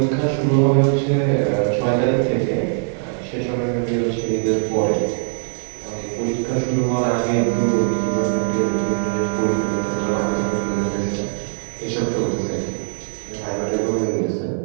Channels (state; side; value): silent; left; 56 dB below the other